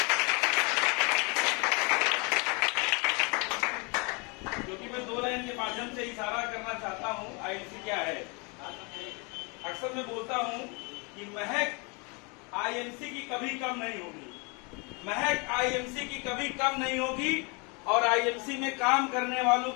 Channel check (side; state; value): right; quieter; 31.3 dB